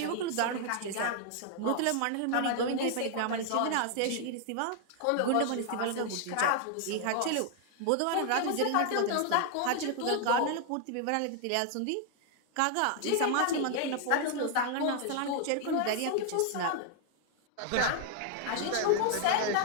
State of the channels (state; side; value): different; both; correlation 0.00